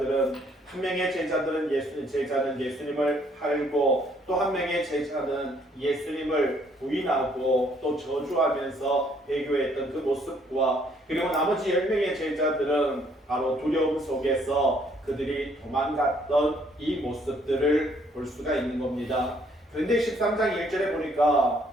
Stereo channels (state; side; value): normal; both; correlation 0.65